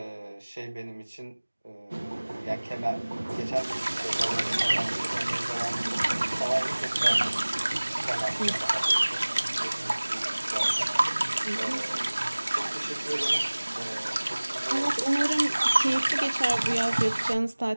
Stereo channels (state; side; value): inverted; both; correlation -1.00